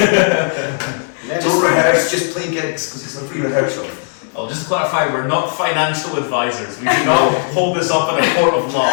Don't rehearse, just play gigs because it's a free rehearsal. Oh, just to clarify, we're not financial advisors. We do not hold this up in a court of law.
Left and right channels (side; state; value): right; silent; 69 dB below the other